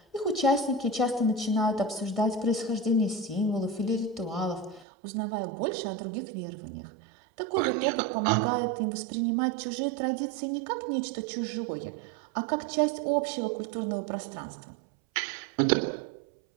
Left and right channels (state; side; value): drops out; left; at 4.9 s